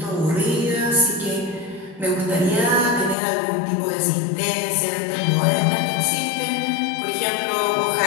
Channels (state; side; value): drops out; right; at 3.2 s